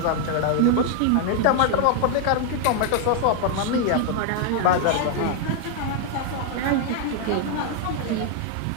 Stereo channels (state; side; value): different; both; correlation 0.00